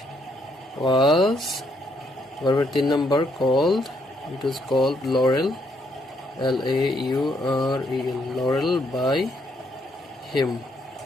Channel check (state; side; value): normal; both; correlation 0.72